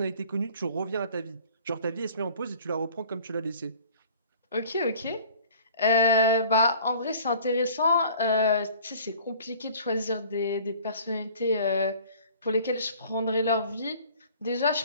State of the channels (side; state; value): both; inverted; correlation -0.49